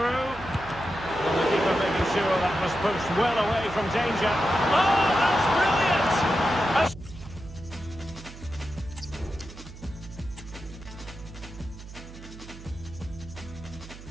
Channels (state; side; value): noise; right; hum, 15 dB below the sound